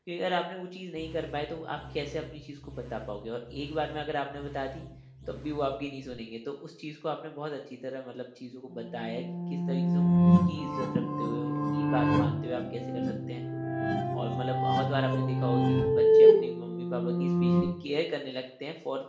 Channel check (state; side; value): identical; both; correlation 1.00